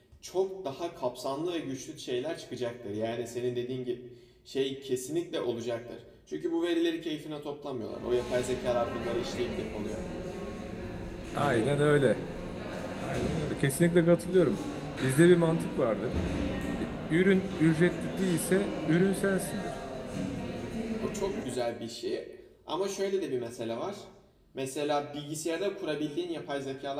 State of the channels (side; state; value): both; identical; correlation 1.00